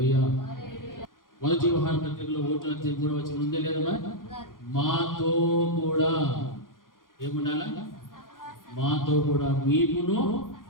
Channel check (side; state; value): right; late; 0.90 ms